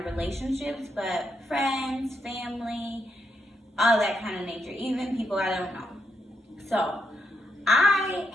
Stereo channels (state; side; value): normal; both; correlation 0.79